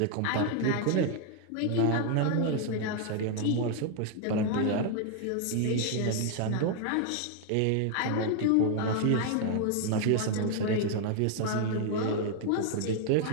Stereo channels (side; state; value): both; different; correlation 0.00